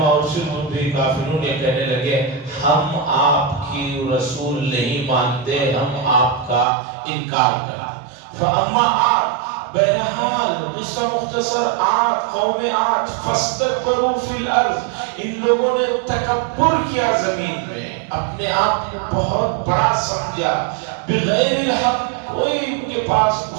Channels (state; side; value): drops out; left; at 6.7 s